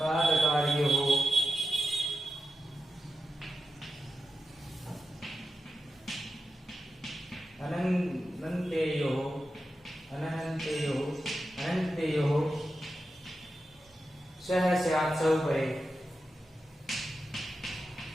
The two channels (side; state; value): both; normal; correlation 0.90